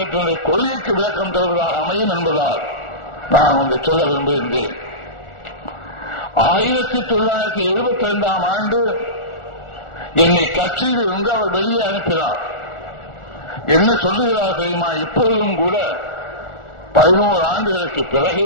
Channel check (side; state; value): right; late; 1.4 ms